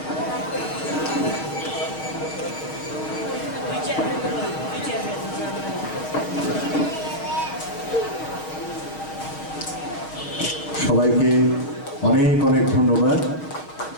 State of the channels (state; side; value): late; right; 6.2 ms